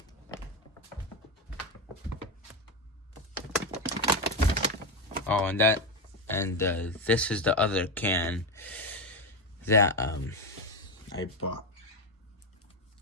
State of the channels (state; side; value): normal; both; correlation 0.12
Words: Oh, and this is the other can that I bought.